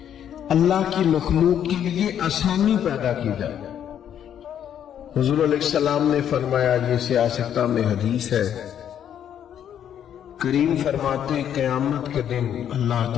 اللہ کی مخلوق کے لیے آسانی پیدا کی جائے۔ حضور علیہ السلام نے فرمایا، یہ سیاستہ میں حدیث ہے، کریم فرماتے ہیں قیامت کے دن اللہ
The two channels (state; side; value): quieter; right; 9.6 dB